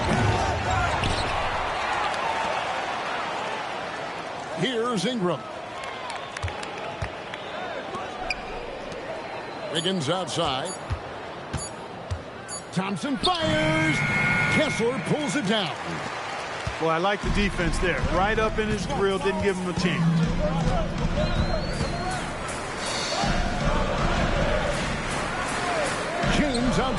Here's Ingram. Wiggins outside. Thompson fires. Kessler pulls it down. Well, I like the defense there. Right up in his grill, didn't give him a chance. James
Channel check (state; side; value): identical; both; correlation 1.00